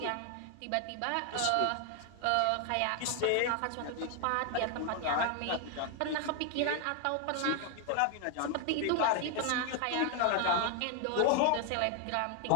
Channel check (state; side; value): different; both; correlation 0.00